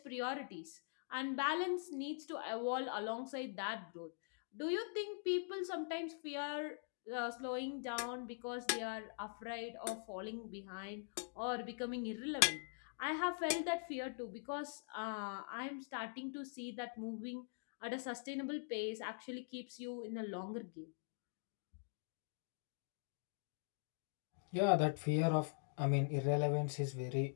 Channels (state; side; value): silent; right; digital silence